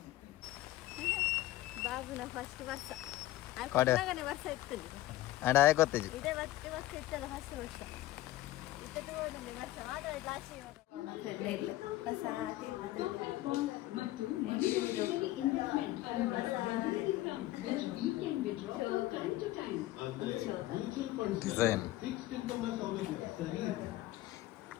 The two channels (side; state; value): right; quieter; 16.1 dB